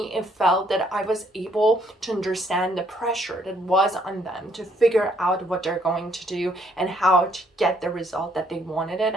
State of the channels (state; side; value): normal; both; correlation 0.68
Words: it felt that I was able to understand the pressure that was on them to figure out what they're going to do and how to get the result that they wanted it,